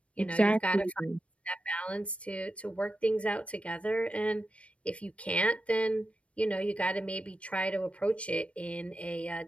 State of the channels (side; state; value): right; late; 0.062 ms